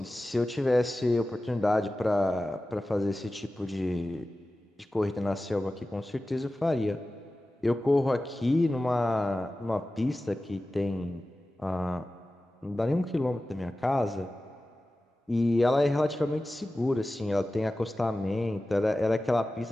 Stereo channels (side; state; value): both; normal; correlation 0.95